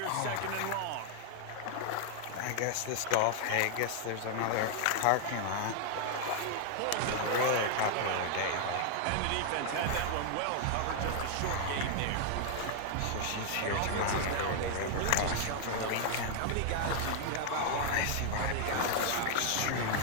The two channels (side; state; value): both; different; correlation 0.00